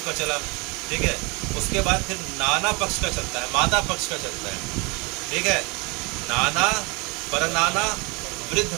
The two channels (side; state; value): left; quieter; 28.7 dB